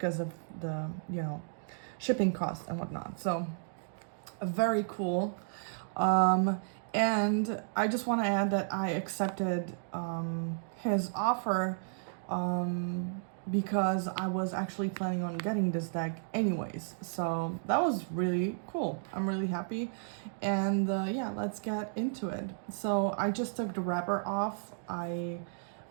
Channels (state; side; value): silent; left; digital silence